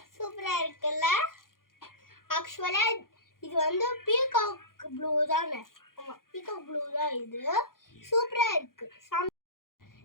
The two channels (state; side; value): late; right; 0.91 ms